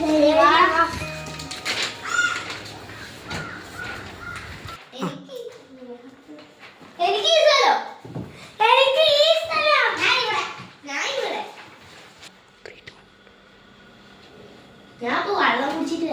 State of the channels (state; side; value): identical; both; correlation 1.00